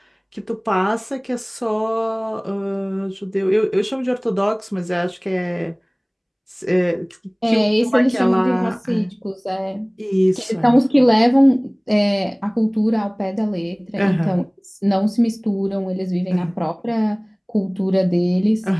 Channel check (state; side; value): identical; both; correlation 1.00